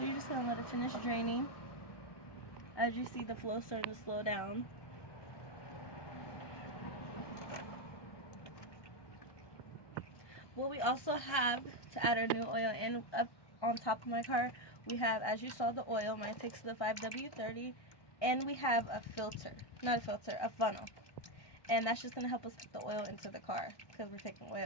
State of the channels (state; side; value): late; right; 1.2 ms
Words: you're just going to let it finish draining. As you see the flow starting to slow down. What we also have to add our new oil in up on top of my car, we have, as you saw, the oil. Mine takes the 5W30, and we have a filter, not a filter, a funnel. And that's just going to help us put the oil into the car because we're taking